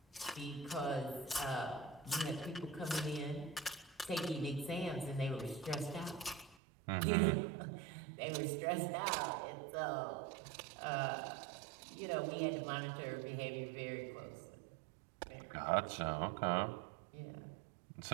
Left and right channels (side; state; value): left; drops out; at 6.6 s